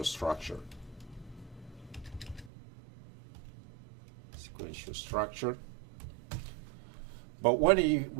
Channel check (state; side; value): drops out; left; at 2.5 s